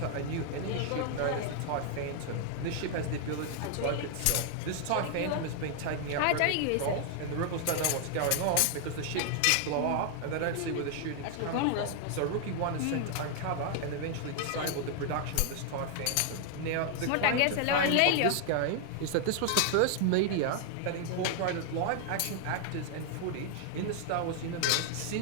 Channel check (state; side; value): different; both; correlation 0.00